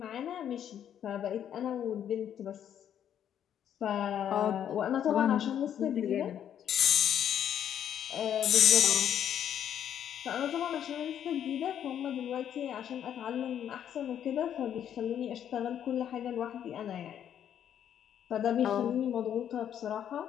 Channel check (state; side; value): quieter; right; 9.7 dB